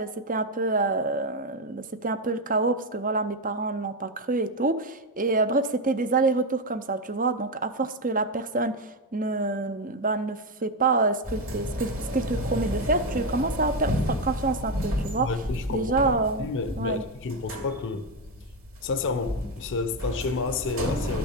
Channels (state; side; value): normal; both; correlation 0.09